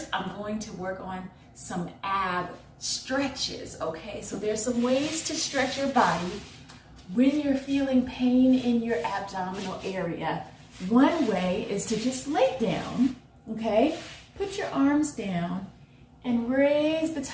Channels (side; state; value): both; identical; correlation 1.00